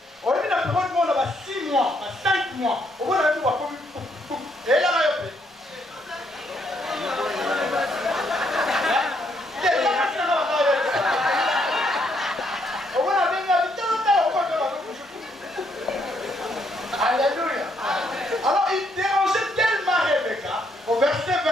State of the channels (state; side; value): normal; both; correlation 0.73